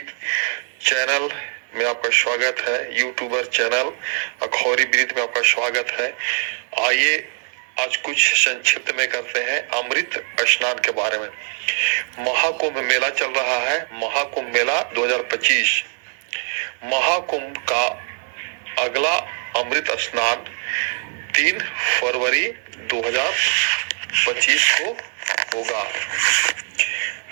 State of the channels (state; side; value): silent; left; 63 dB below the other